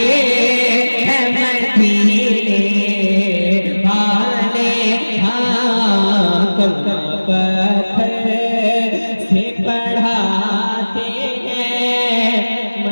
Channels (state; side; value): inverted; both; correlation -1.00